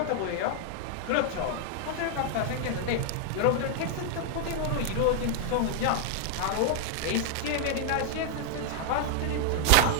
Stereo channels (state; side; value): different; both; correlation -0.01